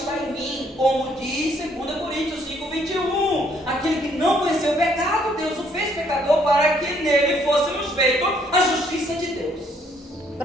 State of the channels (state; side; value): normal; both; correlation 0.66